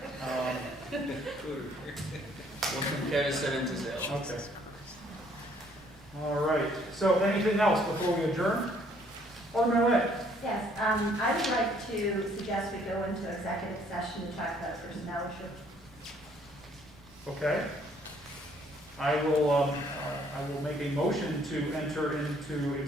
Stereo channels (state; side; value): noise; right; rumble, 25 dB below the sound